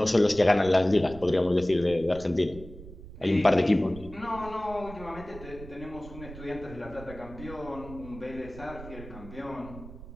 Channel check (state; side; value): noise; right; rumble, 15 dB below the sound